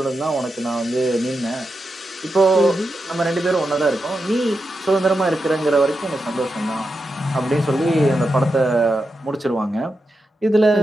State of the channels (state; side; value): normal; both; correlation 0.88